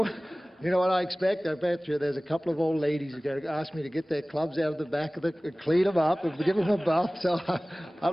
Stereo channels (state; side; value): normal; both; correlation 0.98